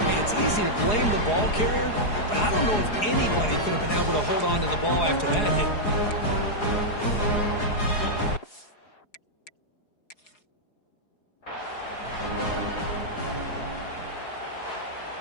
hey, it's easy to blame the ball carrier, but I don't know if anybody could have been able to hold on to the ball after that hit.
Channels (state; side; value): late; right; 4.8 ms